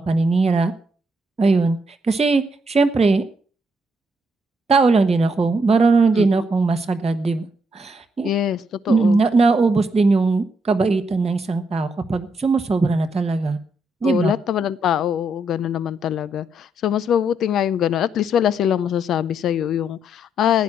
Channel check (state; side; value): normal; both; correlation 0.76